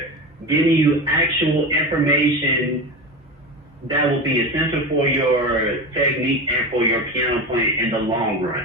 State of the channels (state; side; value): normal; both; correlation 0.24